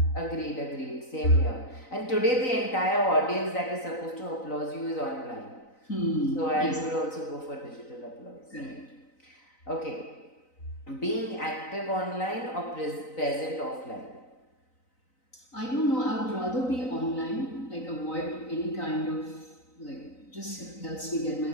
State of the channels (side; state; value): right; late; 3.9 ms